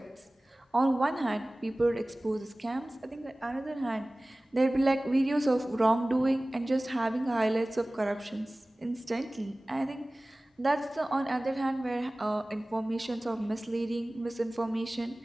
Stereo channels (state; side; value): normal; both; correlation 0.98